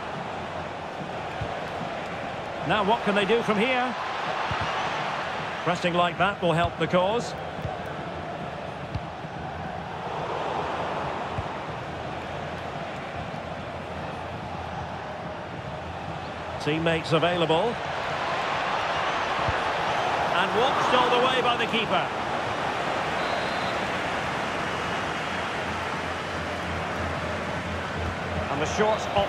Now what can they do from here? Pressing like that will help the cause. Teammates available. And watched all the way by the keeper. And the short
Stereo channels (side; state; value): both; identical; correlation 1.00